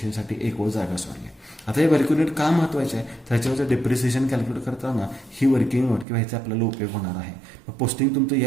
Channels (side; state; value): left; drops out; at 6.1 s